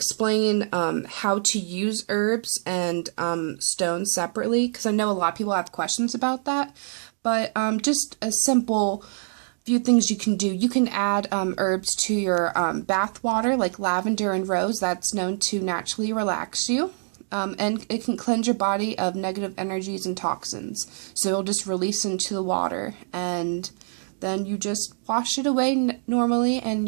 how to use herbs and stones separately, because I know a lot of people have questions about that. But just a simple few things you can do. You can add herbs to your bath water, like lavender and rose. That's known to naturally relax you. And it can cleanse your body of negative energies and toxins. So it'll just release into the water, and then you just wash it away normally, and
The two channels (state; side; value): silent; left; digital silence